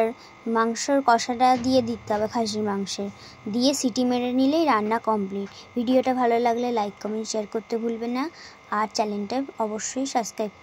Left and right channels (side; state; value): both; identical; correlation 1.00